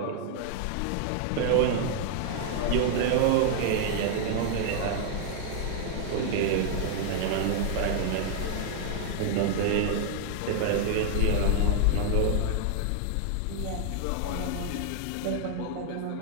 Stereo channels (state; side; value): different; both; correlation -0.01